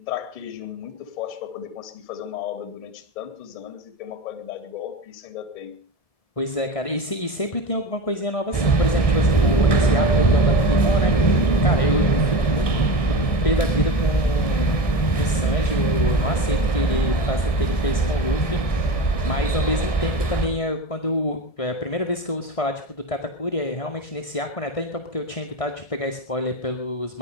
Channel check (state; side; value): late; right; 1.7 ms